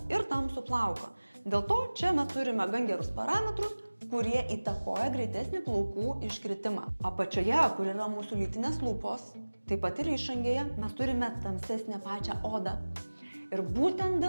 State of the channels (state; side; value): inverted; both; correlation -1.00